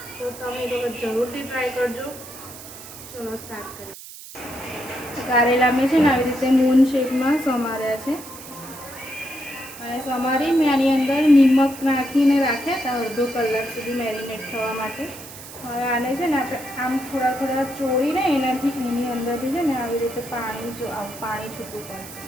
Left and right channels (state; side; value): noise; right; hiss, 15 dB below the sound